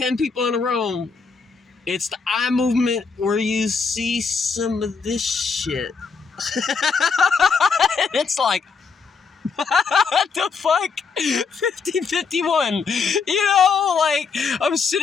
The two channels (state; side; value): quieter; right; 5.2 dB